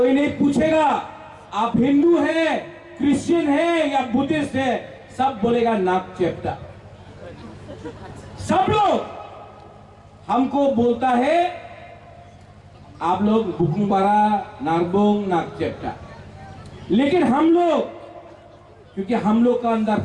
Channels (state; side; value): identical; both; correlation 1.00